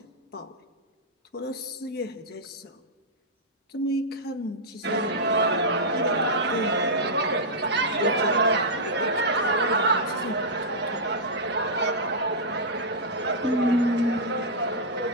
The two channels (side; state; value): both; normal; correlation -0.10